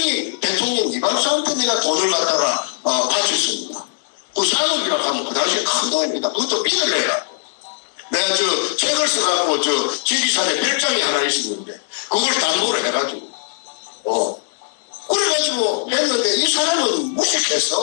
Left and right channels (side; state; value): right; silent; digital silence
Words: 대통령 이발사한테 내가 돈을 갖다가 바쳤습니다. 그 산업이라고 하면 그 당시에 큰 돈입니다. 그것도 빚을 내라. 내가 책을 써갖고 지리산에 별장이 하나 있었는데 그걸 담보를 해가지고 그래가지고 했는데 이 사람은